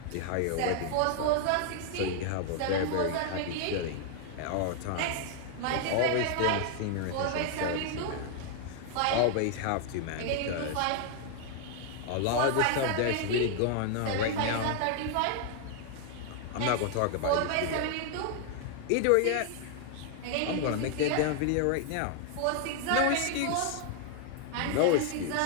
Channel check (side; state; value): both; different; correlation 0.00